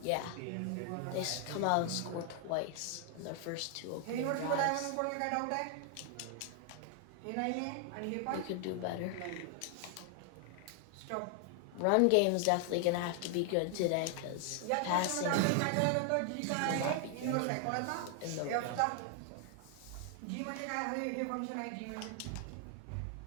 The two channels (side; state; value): both; different; correlation 0.00